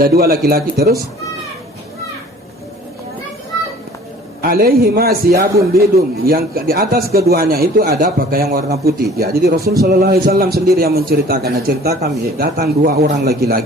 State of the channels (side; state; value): both; normal; correlation 0.49